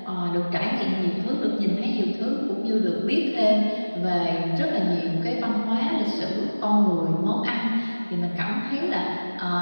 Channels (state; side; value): inverted; both; correlation -1.00